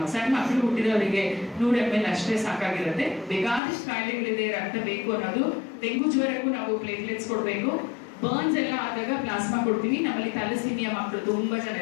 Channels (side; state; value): right; drops out; at 3.6 s